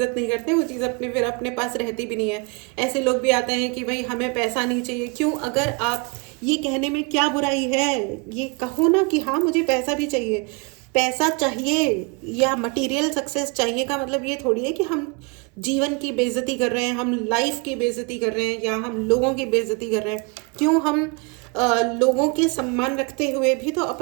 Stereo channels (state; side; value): quieter; left; 31.4 dB